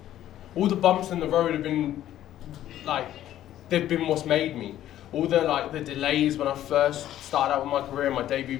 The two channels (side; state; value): right; quieter; 12.5 dB